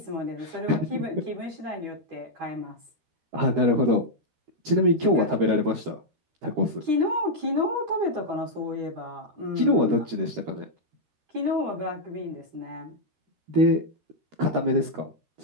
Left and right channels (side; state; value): left; late; 13 ms